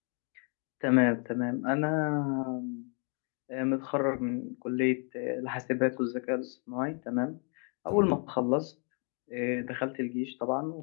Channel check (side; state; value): right; quieter; 38.6 dB